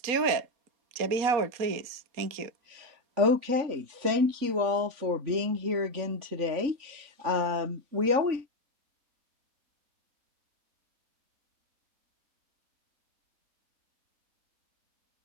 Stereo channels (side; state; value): left; late; 3.5 ms